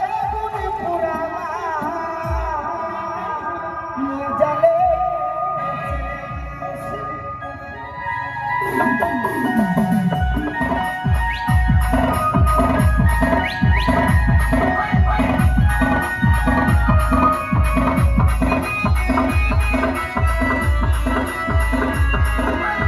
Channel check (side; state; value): both; identical; correlation 1.00